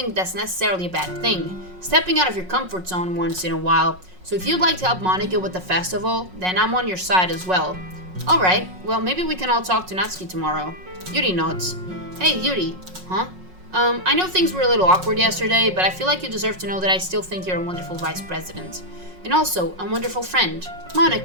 that's necessarily a bad thing. Stepping out of your comfort zone once in a while. So if you'd like to help Monica with the festival, then I'm on your side as well. Alright, well maybe we can all talk to Natsuki tomorrow. Yuri nods. Hey Yuri, huh? I know things were a little awkward yesterday, but I feel like you deserve to know that I still think you're a wonderful vice president. And also, a wonderful friend.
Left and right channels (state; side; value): late; left; 5.5 ms